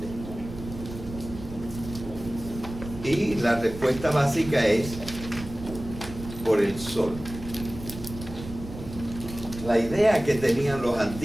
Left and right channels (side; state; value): right; noise; rumble, 12 dB below the sound